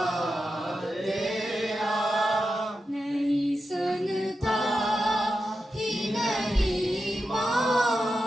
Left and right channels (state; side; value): normal; both; correlation 0.90